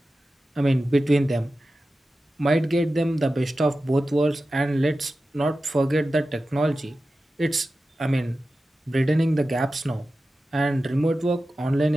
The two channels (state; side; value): normal; both; correlation 0.93